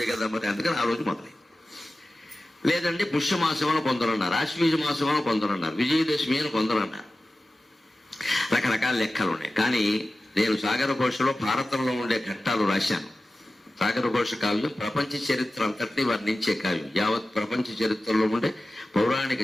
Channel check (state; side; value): normal; both; correlation 0.95